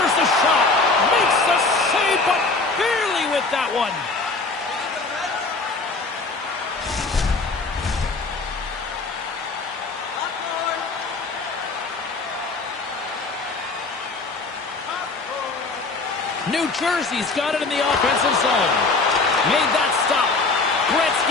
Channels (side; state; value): right; quieter; 3.7 dB